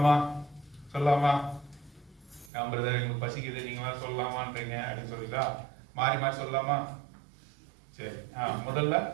பிரதர் எங்களுக்கு பசிக்குது, நீங்களா சொல்லலாமான்றீங்க அப்படின்னு சொல்லிட்டா மாறி சொல்லலாமா? சரி. முதல்ல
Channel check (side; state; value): left; drops out; at 2.5 s